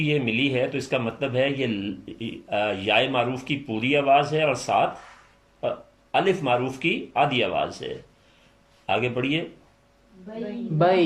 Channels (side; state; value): both; identical; correlation 1.00